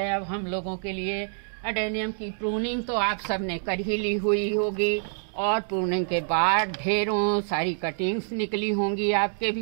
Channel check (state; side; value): silent; left; digital silence